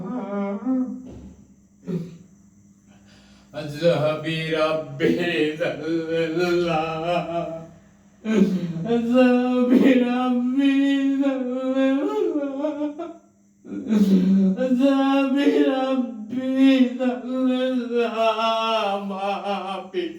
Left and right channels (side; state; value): both; identical; correlation 1.00